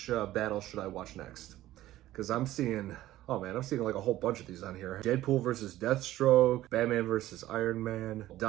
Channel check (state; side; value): quieter; left; 15.0 dB